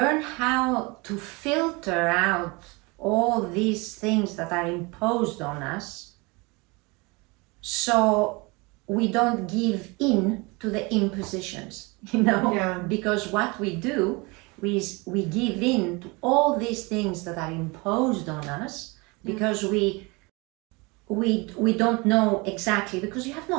how to filter out all these things that are imposed on us, so we don't give in to the impositions, because what we do is we give in to all these things that are imposed on us, because we don't know exactly, because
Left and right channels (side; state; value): left; quieter; 26.6 dB